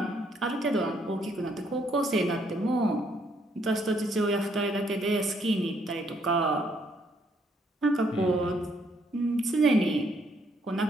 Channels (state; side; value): normal; both; correlation 0.70